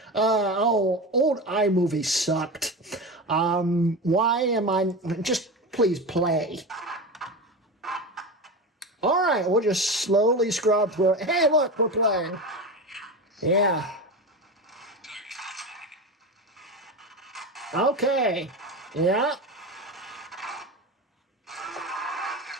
Old iMovie sucked. Why am I... Just please play. All right, we'll just slowly scrub through it. Hey, look, we're playing. Yeah. Okay. Yeah.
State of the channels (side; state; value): both; normal; correlation 0.24